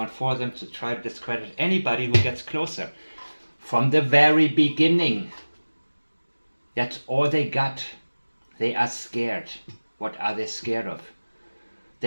for them to try to discredit anybody who gets closer. From the very beginning. That's all they got. They are scared. What are they scared of?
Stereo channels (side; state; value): both; inverted; correlation -1.00